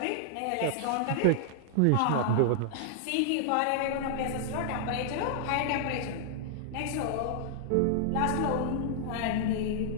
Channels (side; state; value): both; different; correlation -0.01